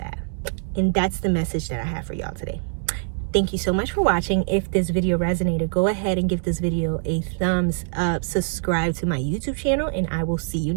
And that's the message that I have for y'all today. Thank you so much for watching. If this video resonated, go ahead and give this video a thumbs up, subscribe to my YouTube channel, and I will see you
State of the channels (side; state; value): left; silent; digital silence